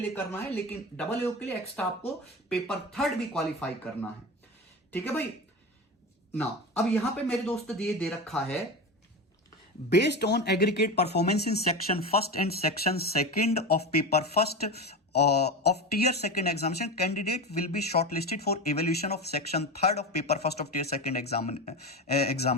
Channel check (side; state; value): both; normal; correlation 0.23